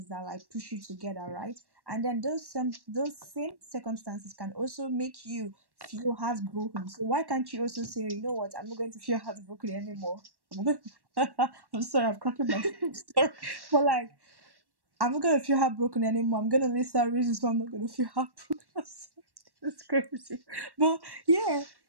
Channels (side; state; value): left; late; 1.1 ms